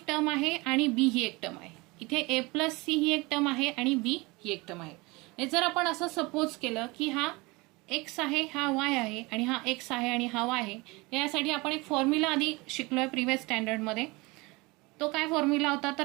टर्म आहे आणि बी ही एक टर्म आहे. इथे ए प्लस सी ही एक टर्म आहे आणि बी ही एक टर्म आहे. जर आपण असं सपोज केलं की हा एक्स आहे, हा वाय आहे, आणि हा एक्स आहे आणि हा वाय आहे, यासाठी आपण एक फॉर्म्युला आधी शिकलोय प्रिव्हियस स्टँडर्डमध्ये. तो काय फॉर्म्युला होता तर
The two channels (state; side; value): quieter; left; 24.4 dB